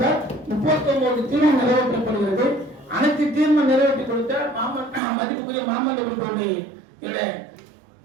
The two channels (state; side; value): drops out; left; at 5.0 s